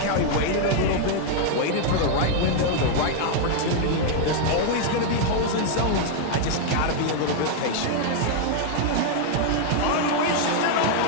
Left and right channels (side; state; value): both; different; correlation 0.00